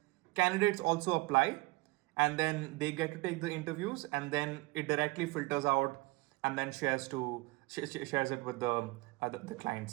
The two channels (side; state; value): left; quieter; 22.8 dB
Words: candidates also apply, and then they get to take the interviews, and then it directly filters out and then shares it with the